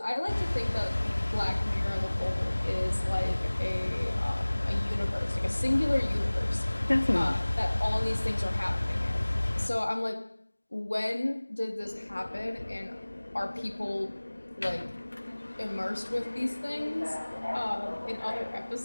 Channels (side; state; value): both; inverted; correlation -1.00